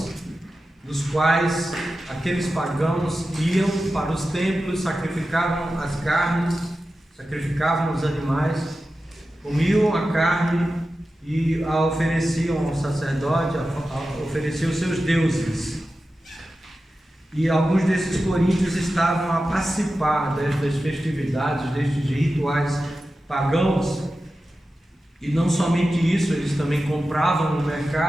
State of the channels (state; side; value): normal; both; correlation 0.93